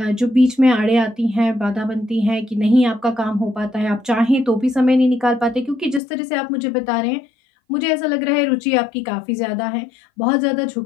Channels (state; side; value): drops out; right; at 6.0 s